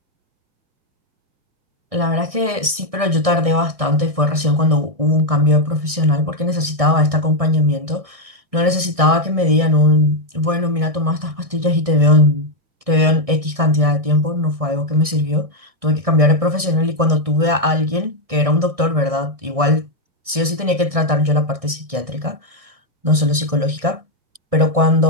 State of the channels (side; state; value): left; late; 1.6 ms